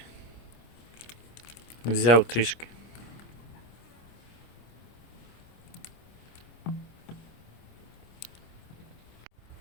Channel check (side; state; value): right; late; 25 ms